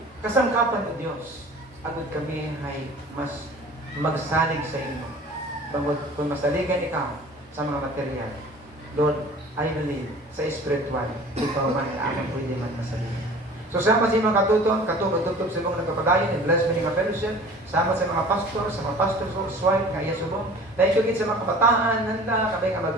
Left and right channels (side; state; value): both; normal; correlation 0.44